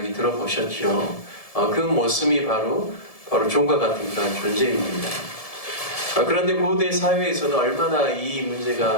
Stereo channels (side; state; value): right; late; 1.7 ms